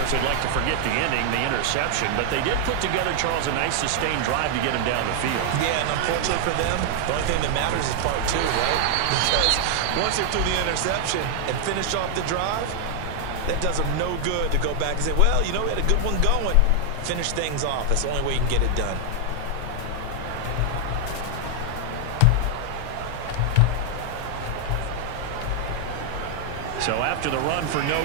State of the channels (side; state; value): both; different; correlation 0.00